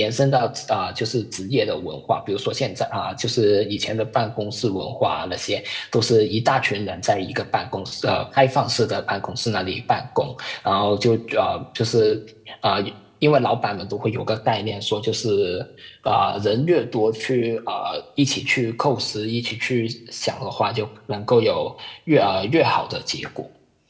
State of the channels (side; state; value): both; identical; correlation 1.00